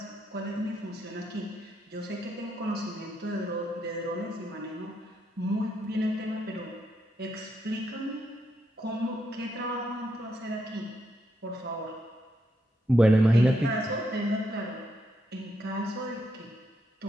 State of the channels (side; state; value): both; normal; correlation 0.80